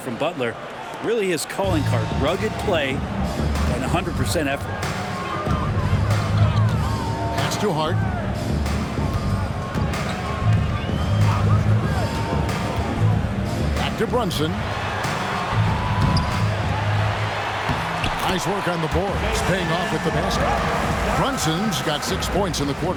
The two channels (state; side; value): identical; both; correlation 1.00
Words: Butler. Really his calling card. Rugged play and 100% effort. Pass to Hart. Back to Brunson. Nice work on the board. It's paying off with the basket. Brunson's got 6 points in the